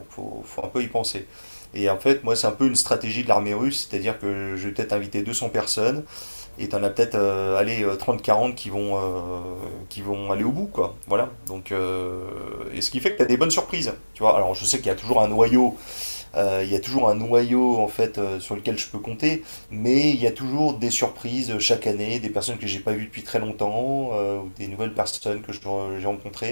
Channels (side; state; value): both; inverted; correlation -1.00